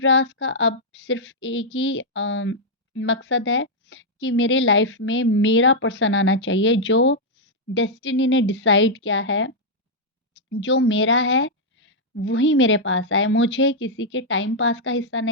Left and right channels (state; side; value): normal; both; correlation -0.05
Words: का अब सिर्फ़ एक ही मकसद है कि मेरे लाइफ में मेरा पर्सन आना चाहिए, जो डेस्टिनी ने डिसाइड किया है, जो मेरा है वही मेरे पास आए। मुझे किसी के टाइम पास का हिस्सा